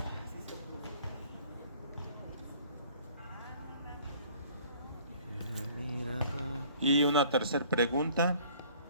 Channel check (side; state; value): both; inverted; correlation -0.54